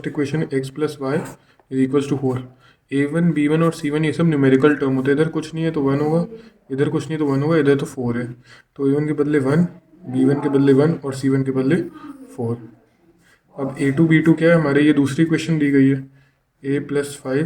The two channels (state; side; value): identical; both; correlation 1.00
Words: इक्वेशन है X plus Y is equals to 4। a1 b1 और c1 ये सब न्यूमेरिकल टर्म होते हैं, इधर कुछ नहीं है तो 1 होगा, इधर कुछ नहीं है तो 1 होगा, इधर तो 4 है तो a1 के बदले 1, b1 के बदले 1 और c1 के बदले 4। अब a2 b2 क्या है हमारे, ये दूसरी इक्वेशन दी गई है, a plus